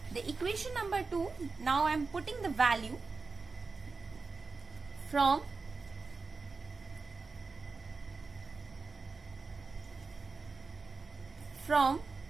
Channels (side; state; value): left; quieter; 4.3 dB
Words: The equation number 2, now I am putting the value from from